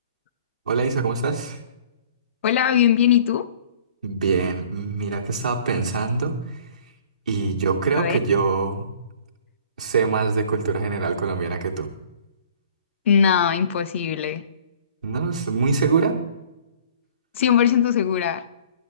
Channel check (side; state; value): both; inverted; correlation -0.51